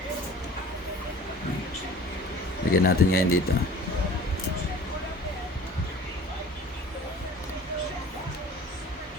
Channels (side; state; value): both; normal; correlation 0.45